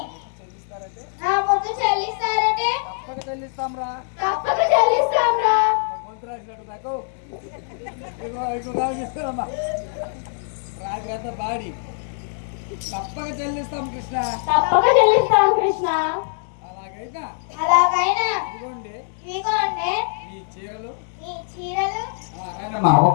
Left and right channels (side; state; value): right; silent; digital silence